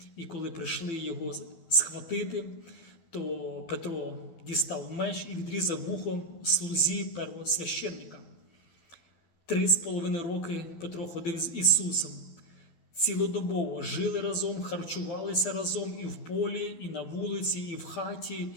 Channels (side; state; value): right; late; 12 ms